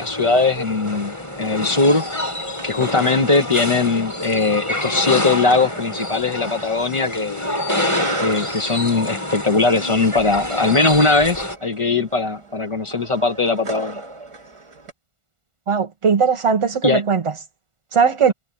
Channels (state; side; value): late; left; 1.4 ms